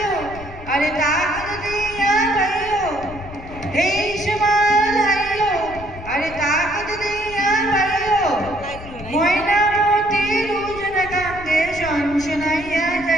আরে তাকত দিয়া ভাইও, এই সমান হাইও আরে তাকত দিয়া ভাইও, ময়নামতি রুজন কান্দে শনশনাইয়া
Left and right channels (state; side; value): noise; left; rumble, 14 dB below the sound